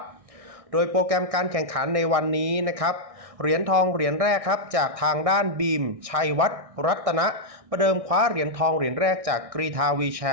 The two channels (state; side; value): late; left; 1.6 ms